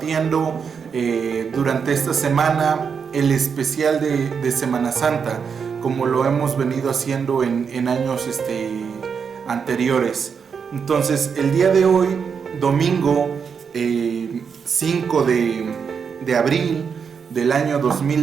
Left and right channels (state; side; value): quieter; left; 6.4 dB